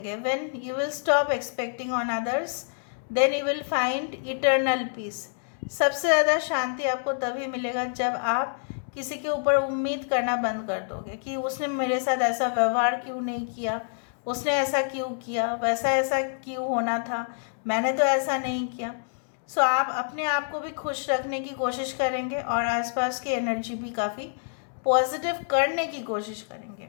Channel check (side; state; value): right; silent; digital silence